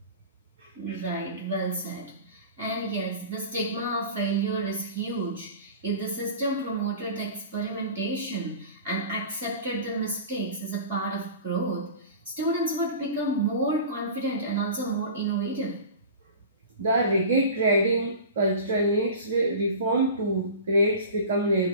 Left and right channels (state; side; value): inverted; both; correlation -0.36